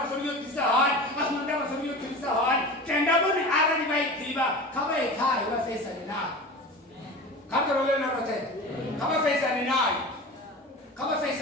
sori yotisa hani. Asinandava sori yotisa hani. Tenda boni ara ni vaidiva. Kama ekai wa fesa ni nai. Kako role na rote. Kama fesa ni nai. Kama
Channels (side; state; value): both; normal; correlation 0.33